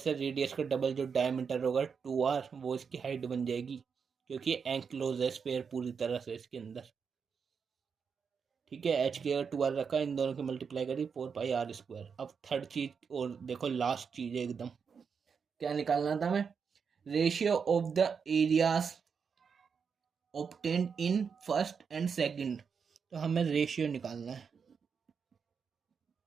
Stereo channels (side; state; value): left; quieter; 6.1 dB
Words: है, रेडियस का डबल जो डायमीटर होगा 2r, वो इसकी हाइट बन जाएगी, क्योंकि एंक्लोज है स्फीयर पूरी तरह से इसके अंदर, ठीक है। एच की अगर 2r रखा, इन दोनों की मल्टीप्लाई करी 4 पाई r²। अब थर्ड चीज और देखो, लास्ट चीज है एकदम, क्या निकालना था हमें, ratio of the areas obtained in first and second. तो हमें रेशियो निकालना है,